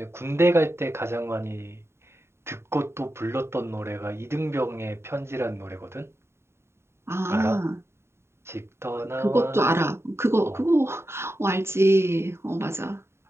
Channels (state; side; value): late; left; 0.12 ms